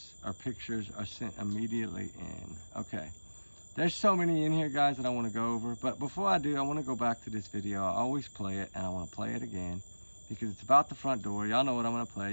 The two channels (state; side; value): inverted; both; correlation -1.00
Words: or pictures are sent immediately in. Okay. There's so many in here, guys, that I want to go over. But before I do, I want to go back to this video. I always play it, and I want to play it again because it's about the front door. Y'all know what I'm going to